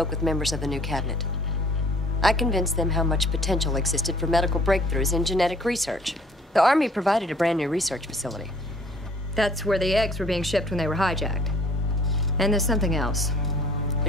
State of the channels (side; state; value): both; normal; correlation 0.56